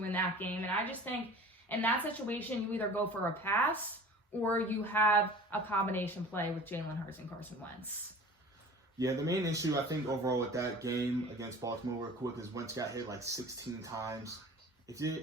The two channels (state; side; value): normal; both; correlation 0.42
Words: in that game. And I just think in that situation, you either go for a pass or you have a combination play with Jalen Hurts and Carson Wentz. Yeah, the main issue I think overall with that game against Baltimore real quick is Wentz got hit like 16 times.